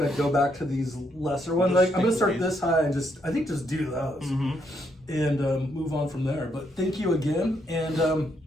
go back to these lesser ones. Like, I'm gonna start this high and just do those and move on from there. But thank you again, and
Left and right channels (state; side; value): normal; both; correlation 0.75